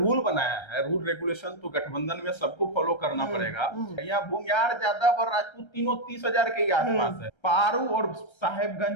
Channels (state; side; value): late; right; 1.3 ms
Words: बनाया है, रूल रेगुलेशन तो गठबंधन में सबको फॉलो करना पड़ेगा। यहाँ भूमिहार, यादव और राजपूत तीनों 30,000 के ही आसपास है। पारू और